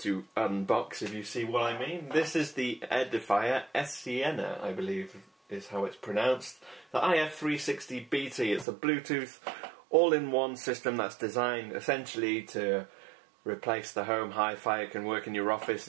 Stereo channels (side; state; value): left; drops out; at 8.7 s